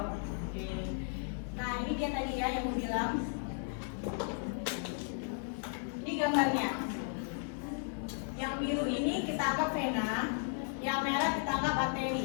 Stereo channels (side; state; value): right; silent; 54 dB below the other